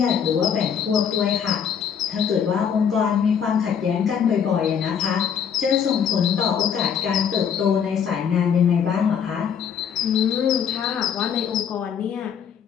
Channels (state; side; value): quieter; right; 7.6 dB